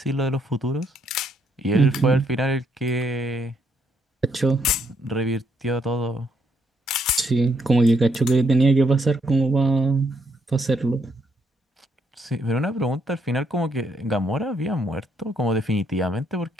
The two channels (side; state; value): both; normal; correlation 0.74